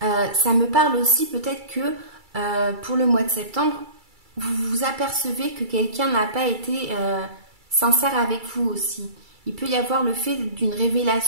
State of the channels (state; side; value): late; left; 2.3 ms